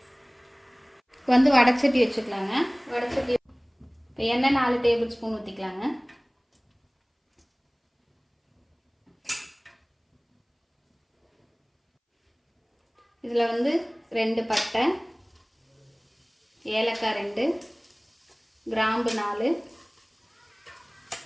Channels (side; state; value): both; identical; correlation 1.00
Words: வடைச்சட்டி வச்சுக்கலாங்க. வடைச்சட்டி எண்ணெய் 4 டேபிள் ஸ்பூன் ஊற்றிக்கலாங்க. இதில் 2 பட்டை, ஏலக்காய் 2, கிராம்பு 4,